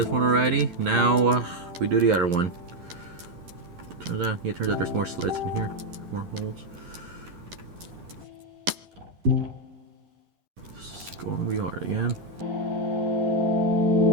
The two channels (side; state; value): left; late; 11 ms